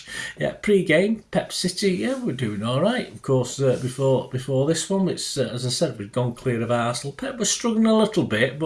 Yeah, pre-game, Pep City, yeah, we're doing all right. Of course, before this one, it's as I said, we'd gone clear of Arsenal. Pep was struggling a little bit,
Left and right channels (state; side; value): identical; both; correlation 1.00